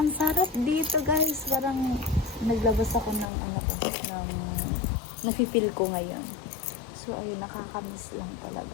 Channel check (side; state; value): right; drops out; at 3.3 s